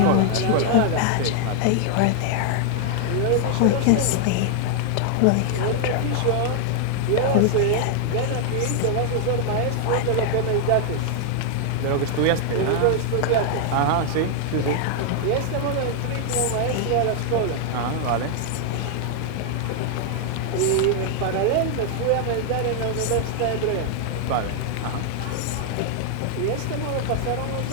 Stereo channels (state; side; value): different; both; correlation 0.00